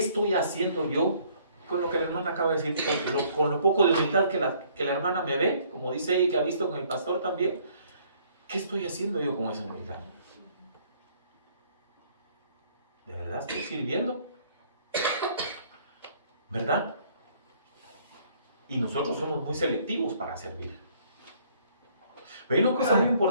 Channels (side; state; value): both; inverted; correlation -0.61